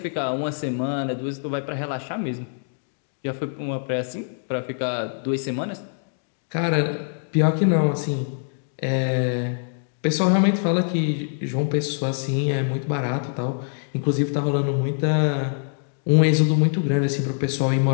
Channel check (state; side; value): silent; right; digital silence